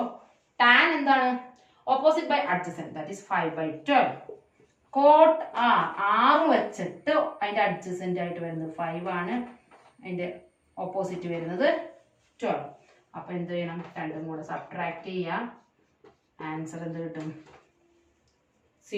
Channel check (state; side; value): identical; both; correlation 1.00